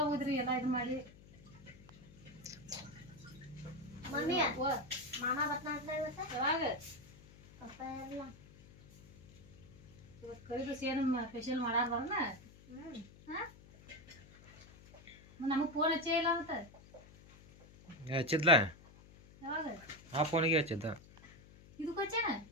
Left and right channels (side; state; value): left; noise; hum, 22 dB below the sound